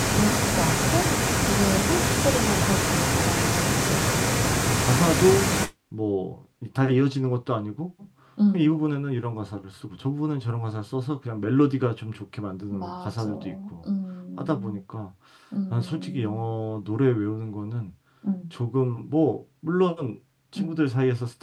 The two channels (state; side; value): identical; both; correlation 1.00